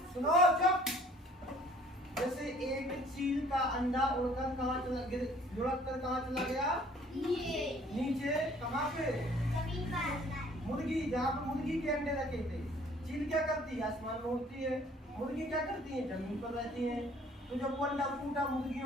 सुनो चुप, जैसे एक चील का अंडा उड़कर कहाँ चला, लुढ़क कर कहाँ चला गया? नीचे। कहाँ पे? मुर्गी, जहाँ पे मुर्गी के अंडे रखे थे। चील क्या करती है? आसमान में उड़ती है। मुर्गी क्या करती है? जमीन पर रहती है। तो जब वो अंडा फूटा,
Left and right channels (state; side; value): normal; both; correlation 0.56